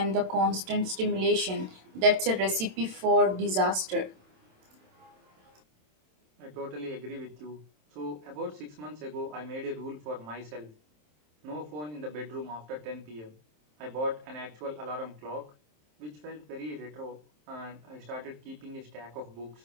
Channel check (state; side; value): late; left; 27 ms